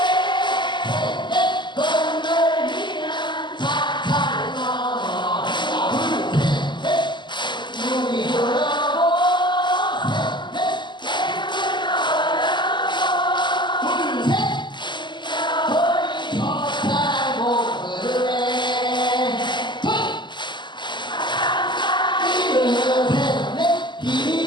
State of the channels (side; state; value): right; late; 0.22 ms